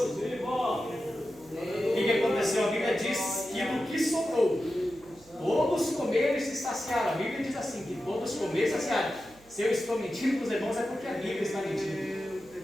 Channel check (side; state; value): right; noise; hum, 26 dB below the sound